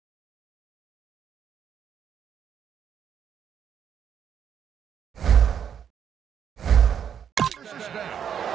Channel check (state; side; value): quieter; left; 8.4 dB